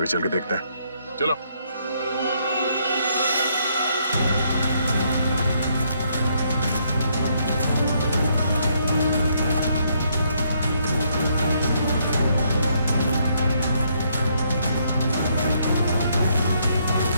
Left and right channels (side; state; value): both; inverted; correlation -0.72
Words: चल के देखते हैं, चलो।